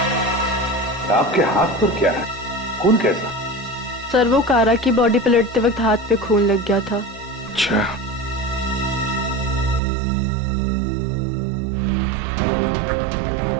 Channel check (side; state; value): left; drops out; at 9.8 s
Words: आपके हाथ पर क्या है? खून कैसा? सर वो कारा की बॉडी पलटते वक्त हाथ पे खून लग गया था। अच्छा।